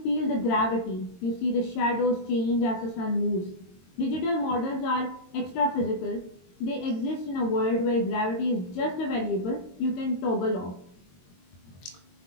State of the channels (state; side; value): late; right; 22 ms